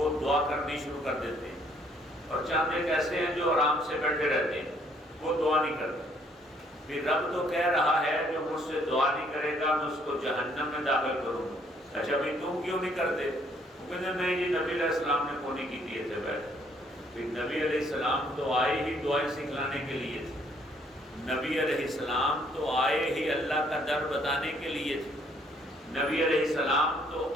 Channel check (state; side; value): normal; both; correlation 0.65